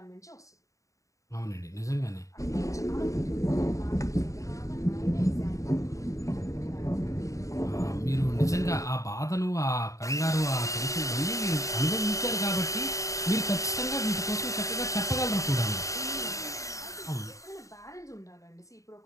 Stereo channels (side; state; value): right; late; 0.16 ms